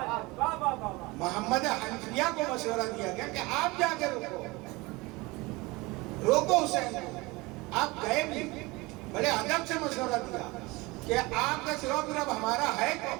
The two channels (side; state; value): left; quieter; 23.3 dB